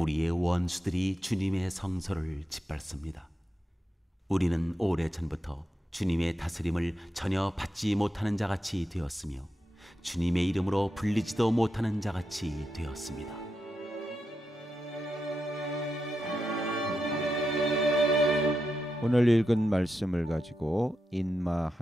원수들이 주님의 성소를 짓밟습니다. 우리는 오래전부터 주님의 다스림을 전혀 받지 못하는 자같이 되었으며 주님의 이름으로 불리지도 못하는 자같이 되었습니다. 오늘 읽은 말씀을 가지고 인마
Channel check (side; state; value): both; normal; correlation 0.87